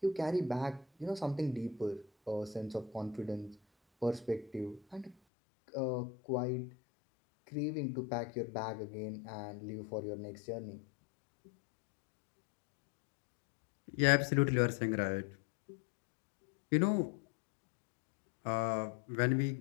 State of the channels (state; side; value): drops out; right; at 5.2 s